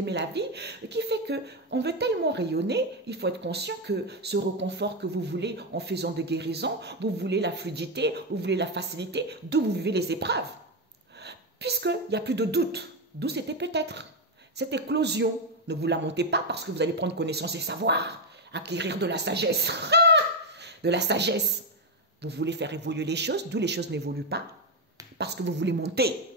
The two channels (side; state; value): both; normal; correlation 0.07